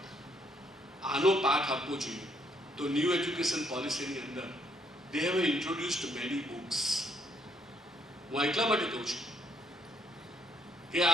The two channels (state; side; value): normal; both; correlation 0.70